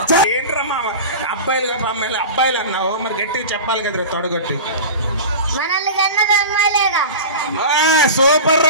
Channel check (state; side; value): inverted; both; correlation -0.31